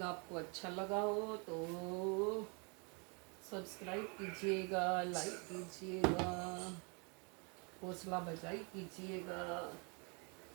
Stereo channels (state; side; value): quieter; left; 34.0 dB